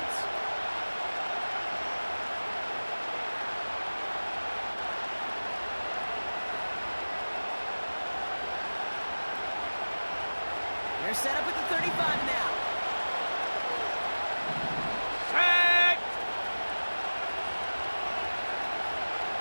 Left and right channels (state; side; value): inverted; both; correlation -1.00